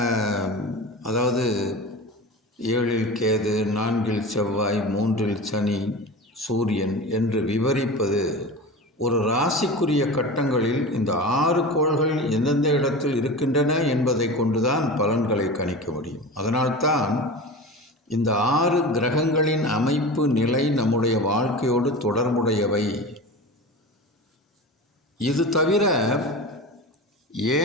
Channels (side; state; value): both; normal; correlation 0.30